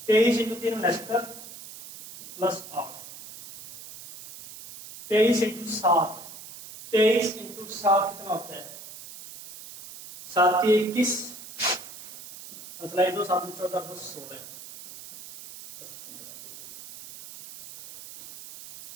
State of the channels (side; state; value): right; noise; hiss, 15 dB below the sound